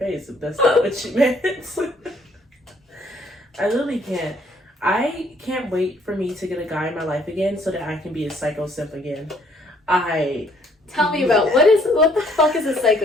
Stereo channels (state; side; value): normal; both; correlation 0.64